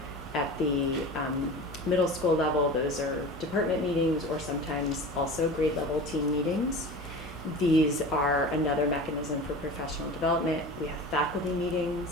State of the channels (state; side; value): normal; both; correlation 0.34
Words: at the middle school level, those are department meetings, or sometimes also grade level team meetings. These are another mechanism for professional development. We have faculty